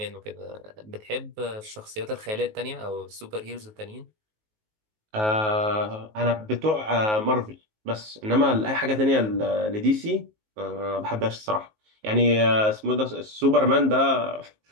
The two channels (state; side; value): late; left; 19 ms